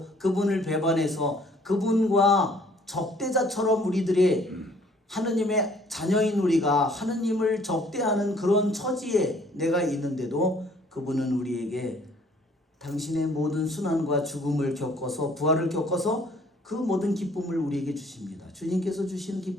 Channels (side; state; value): both; normal; correlation 0.59